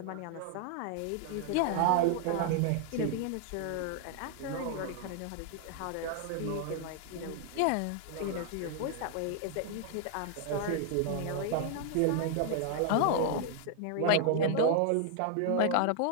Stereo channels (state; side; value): different; both; correlation 0.00